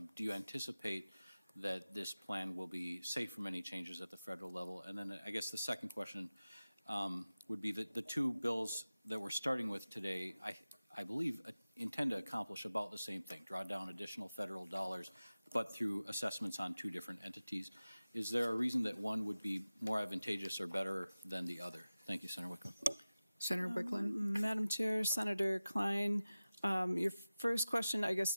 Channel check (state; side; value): inverted; both; correlation -0.96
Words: do you anticipate that this plan will be safe from any changes at the federal level? And then I guess the second question would be that the two bills that we're starting with today, I believe, intend to accomplish about the same thing, draw down additional federal dollars, but through assessments on two different entities. Is there a reason that one would be more advantageous or better than the other? Thank you, Senator Wiklund. Senator Wiklund. Madam Chair, Senator Klein, your first question, I